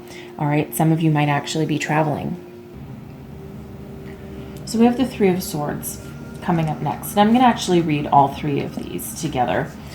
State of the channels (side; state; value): both; identical; correlation 1.00